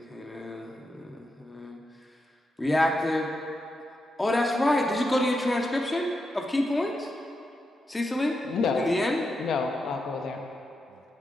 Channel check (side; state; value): both; normal; correlation 0.86